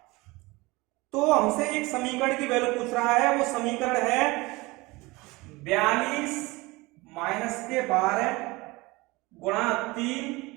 तो हमसे एक समीकरण की वैल्यू पूछ रहा है। वो समीकरण है 42 माइनस के 12 गुणा 3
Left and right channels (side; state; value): left; quieter; 22.7 dB